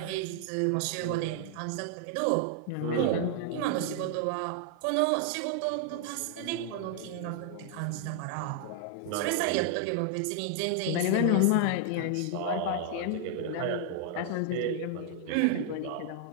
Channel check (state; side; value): different; both; correlation 0.00